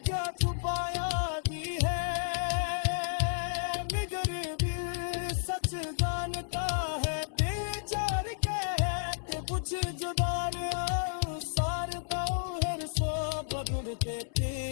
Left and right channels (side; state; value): right; silent; 57 dB below the other